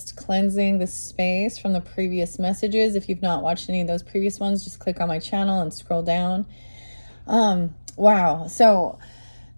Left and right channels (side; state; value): both; inverted; correlation -1.00